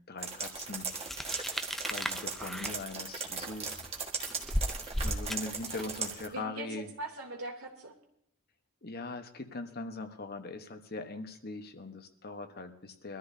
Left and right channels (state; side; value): normal; both; correlation 0.40